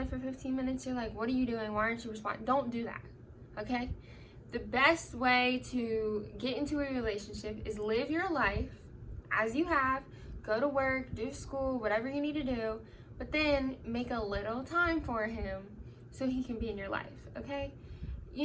for 15 minutes, you're like, what are you doing? Why aren't you responding? Don't do that, okay? The best way to get into a relationship is live your life as you have, go to work, do school, whatever you need to do, but then make a little time for him so he can be in your life, okay?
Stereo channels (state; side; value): identical; both; correlation 1.00